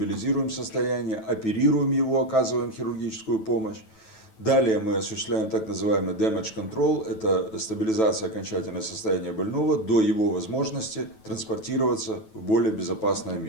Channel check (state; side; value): late; right; 9.2 ms